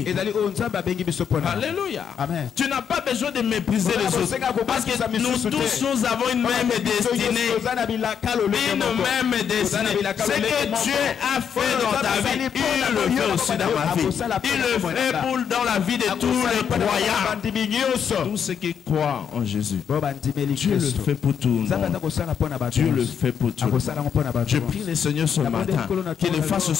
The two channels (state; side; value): quieter; right; 7.8 dB